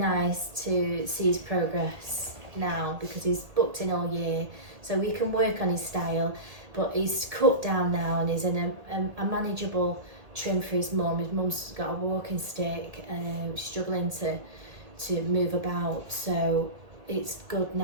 to see his progress now because he's booked in all year, so we can work on his style. But he's cut down now and he's in a manageable trim for his mum. His mum's got a walking stick and struggling to move about, so it's good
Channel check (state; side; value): late; left; 1.8 ms